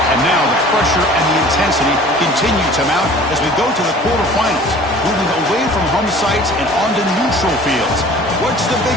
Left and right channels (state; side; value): normal; both; correlation 0.47